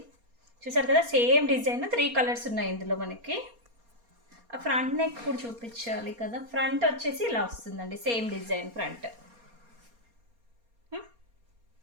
చూసారు కదా, సేమ్ డిజైన్ 3 కలర్స్ ఉన్నాయి ఇందులో మనకి. ఆ ఫ్రంట్ నెక్ కూడా చూపించాలి కదా. ఫ్రంట్ వచ్చేసి ఇలా వస్తుందండి, same design front.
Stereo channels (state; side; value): late; left; 4.3 ms